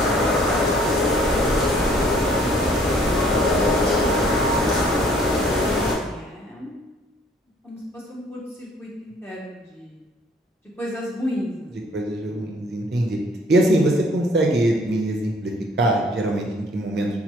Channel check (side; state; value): both; normal; correlation 0.59